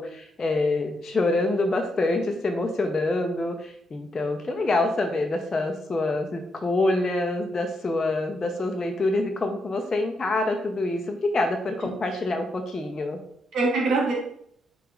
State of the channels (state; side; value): normal; both; correlation 0.81